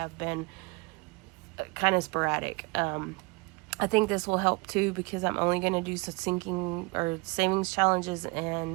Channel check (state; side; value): quieter; left; 27.5 dB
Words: been kind of sporadic. I think this will help too, because I'm only going to do some sinking or savings challenges